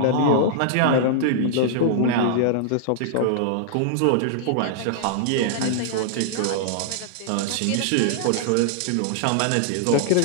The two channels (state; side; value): different; both; correlation -0.01